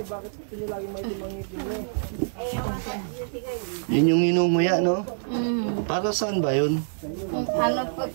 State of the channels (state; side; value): silent; left; digital silence